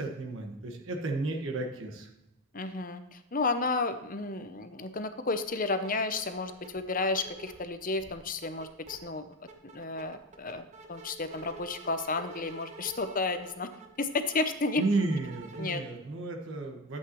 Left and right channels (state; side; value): normal; both; correlation 0.14